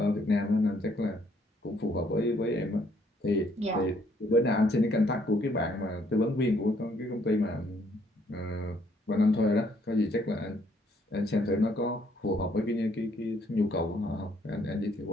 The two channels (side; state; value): both; normal; correlation 0.67